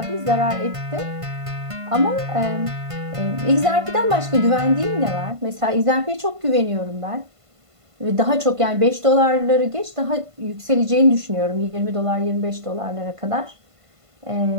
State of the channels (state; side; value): late; left; 1.5 ms